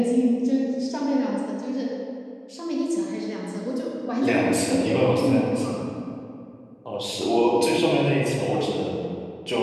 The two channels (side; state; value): both; identical; correlation 1.00